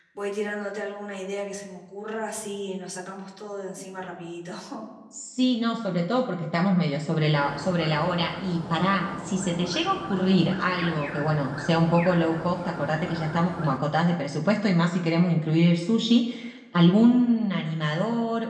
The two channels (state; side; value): identical; both; correlation 1.00